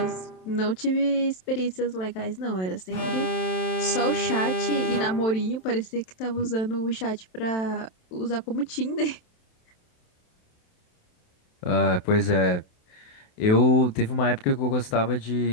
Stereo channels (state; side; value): late; right; 27 ms